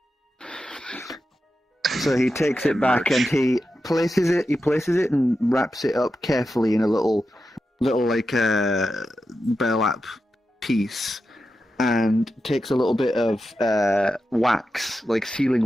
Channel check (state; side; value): normal; both; correlation 0.90